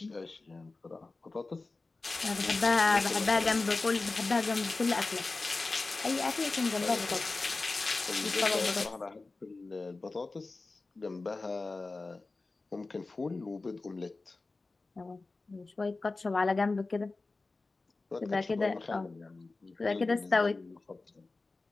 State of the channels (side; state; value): right; quieter; 3.5 dB